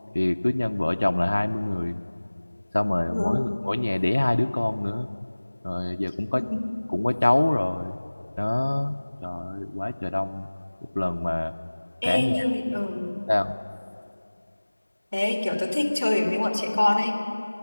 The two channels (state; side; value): inverted; both; correlation -1.00